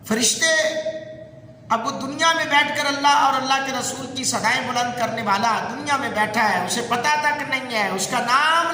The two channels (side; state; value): both; identical; correlation 1.00